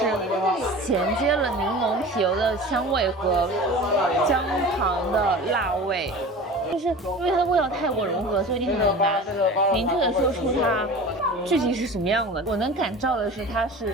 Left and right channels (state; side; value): normal; both; correlation 0.36